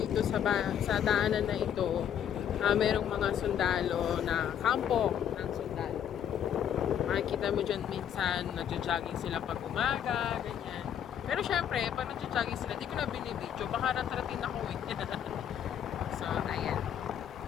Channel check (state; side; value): quieter; right; 9.4 dB